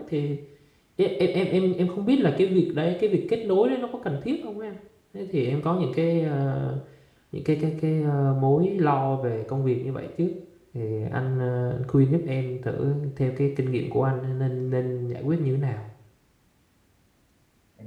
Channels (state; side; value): identical; both; correlation 1.00